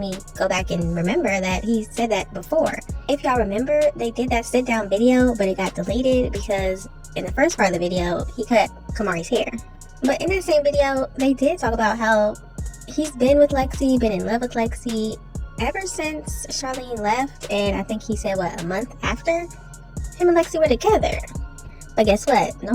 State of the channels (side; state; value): both; identical; correlation 1.00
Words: me go back and remember that he said that before. If y'all remember, they did that sit down video, but it got deleted because in the first part of the video, he cut Kamari's hair. But in that same video, they did talk about how he's been with Lexi, been in love with Lexi ever since Charlene left, and I think he said, what, a month after? Him and Lexi were together. But guess what?